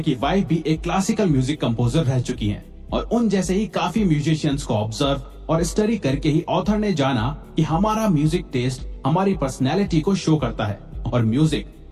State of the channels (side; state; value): both; identical; correlation 1.00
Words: वाइफ भी एक क्लासिकल म्यूजिक कंपोजर रह चुकी हैं, और उन जैसे ही काफी म्यूजिशियंस को ऑब्जर्व और स्टडी करके ही ऑथर ने जाना कि हमारा म्यूजिक टेस्ट हमारी पर्सनैलिटी को शो करता है, और म्यूजिक